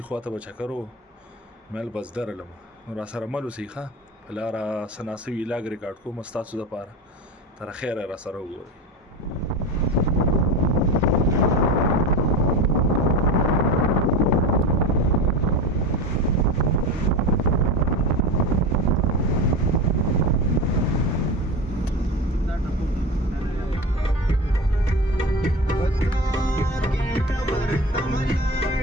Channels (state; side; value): normal; both; correlation 0.27